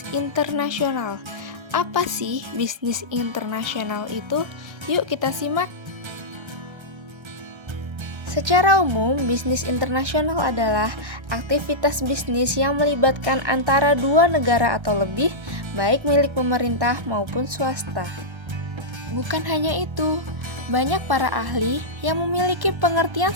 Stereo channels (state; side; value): late; left; 1.3 ms